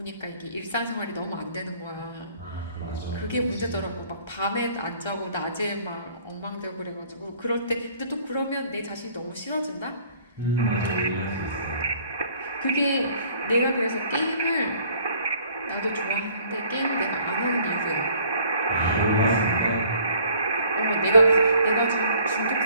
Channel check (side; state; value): both; inverted; correlation -0.57